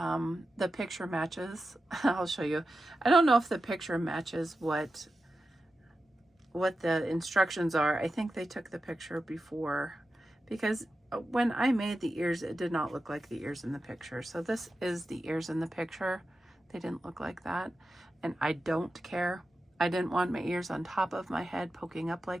picture matches. I'll show you. I don't know if the picture matches what the instructions are. I think they took the picture before, because when I made the ears, it did not look like the ears in the picture. So this is the ears in the picture. They didn't look like that, and I don't care. I didn't want my ears on top of my head poking up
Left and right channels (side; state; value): both; normal; correlation 0.91